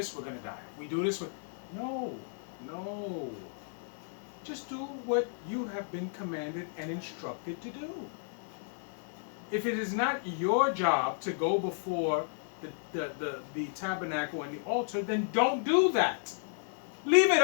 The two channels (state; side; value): silent; right; digital silence